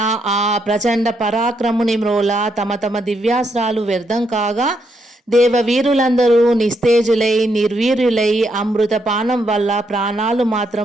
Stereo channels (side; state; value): both; normal; correlation 0.78